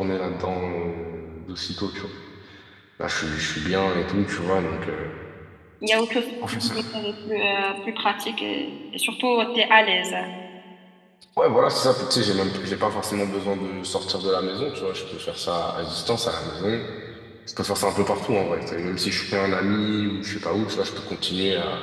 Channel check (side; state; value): both; identical; correlation 1.00